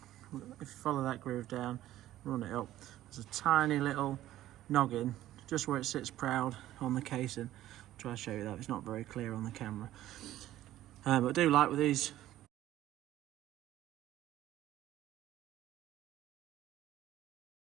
if you follow that groove down, run it up, there's a tiny little noggin just where it sits proud on the casing. I'll try to show you that, it's not very clear on the camera. But I do like with these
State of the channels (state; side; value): quieter; left; 13.9 dB